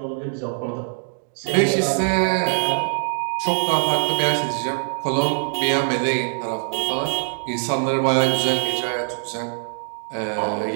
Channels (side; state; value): left; silent; digital silence